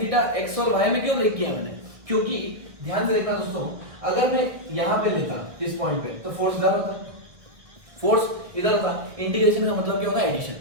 थीटा x और y में क्यों ब्रेक किया मैंने, क्योंकि ध्यान से देखना दोस्तों, अगर मैं यहां पे लेता इस पॉइंट पे तो फोर्स इधर होता, फोर्स इधर होता, इंटीग्रेशन का मतलब क्या होता है, एडिशन,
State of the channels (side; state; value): left; late; 1.6 ms